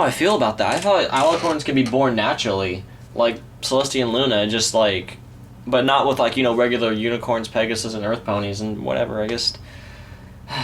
I feel about that. I thought alicorns can be born naturally, like Celestia and Luna, just like, but not with, like, you know, regular unicorns, Pegasus, and Earth ponies and whatever. I guess.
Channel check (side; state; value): both; identical; correlation 1.00